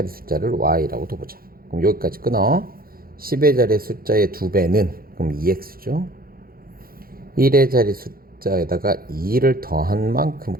숫자를 y라고 둬보자. 그럼 여기까지 끊어. 10의 자리 숫자의 2배는 그럼 2x죠. 1의 자리 숫자에다가 2를 더한 만큼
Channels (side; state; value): left; late; 0.43 ms